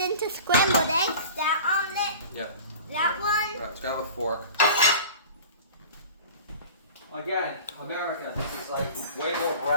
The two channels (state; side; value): inverted; both; correlation -0.40